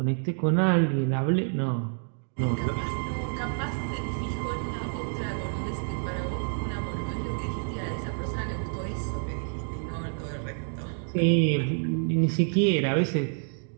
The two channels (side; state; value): left; silent; 59 dB below the other